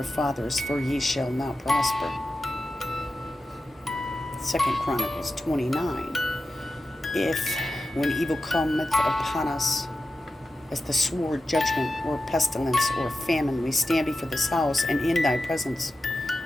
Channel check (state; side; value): normal; both; correlation 0.92